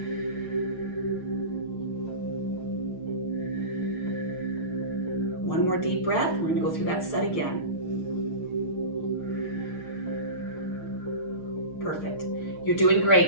One more deep breath. We're going to go through that set again. Perfect. You're doing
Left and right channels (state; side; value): late; right; 6.5 ms